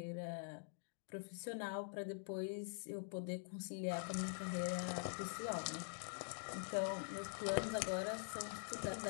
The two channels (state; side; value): silent; right; digital silence